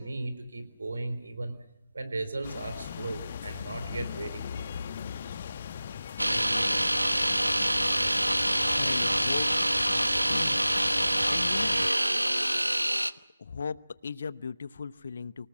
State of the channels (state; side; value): inverted; both; correlation -0.97